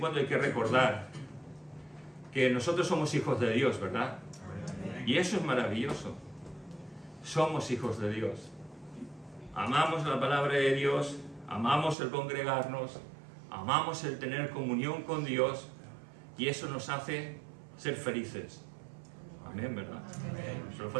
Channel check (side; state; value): left; drops out; at 12.0 s